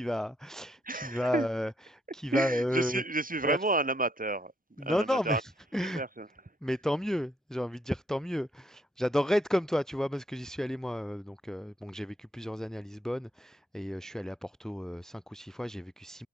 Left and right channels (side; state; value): both; normal; correlation 0.73